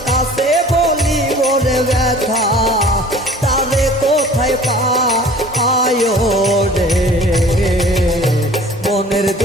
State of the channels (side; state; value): both; normal; correlation 0.47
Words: কাছে বলি বলে ব্যথা, তারে কোথায় পায় রে। মনের